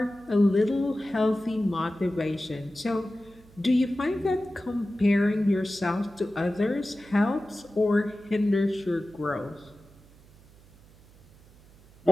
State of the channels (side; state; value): right; noise; hum, 25 dB below the sound